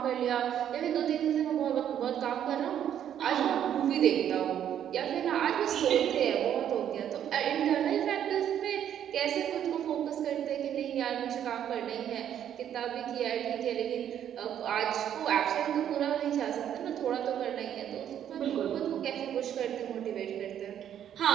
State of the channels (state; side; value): quieter; left; 9.9 dB